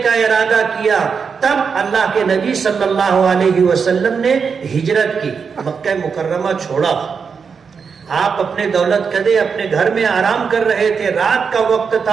کا ارادہ کیا، تب اللہ کے نبی صلی اللہ علیہ وسلم نے ہجرت کی، مکہ مکرمہ چھوڑا۔ آپ اپنے دولت قدے اپنے گھر میں آرام کر رہے تھے، رات کا وقت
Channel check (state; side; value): quieter; left; 5.9 dB